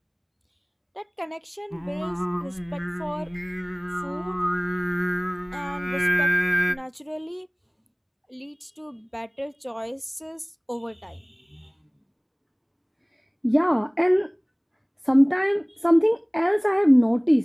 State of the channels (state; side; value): identical; both; correlation 1.00